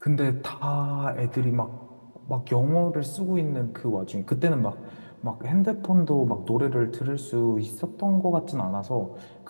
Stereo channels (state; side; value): inverted; both; correlation -1.00